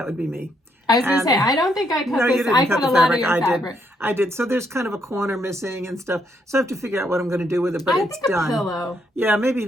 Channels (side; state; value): both; normal; correlation 0.74